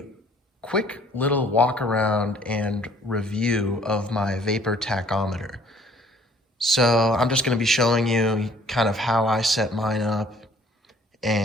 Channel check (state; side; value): normal; both; correlation 0.57